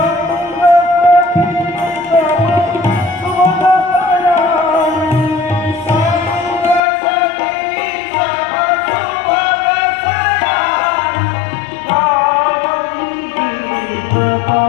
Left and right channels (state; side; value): drops out; right; at 6.8 s